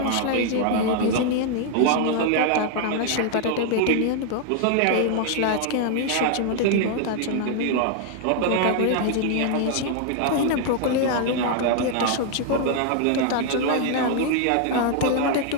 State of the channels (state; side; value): different; both; correlation 0.00